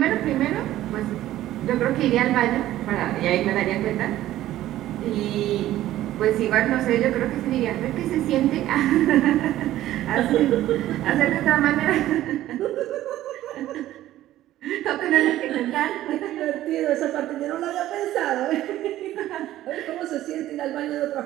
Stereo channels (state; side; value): quieter; left; 14.0 dB